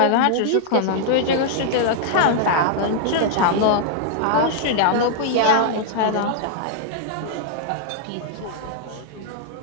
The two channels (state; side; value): different; both; correlation -0.01